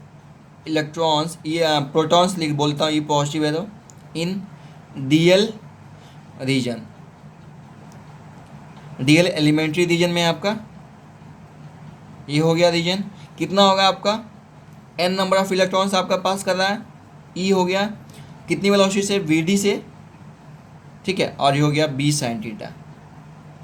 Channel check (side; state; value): both; identical; correlation 1.00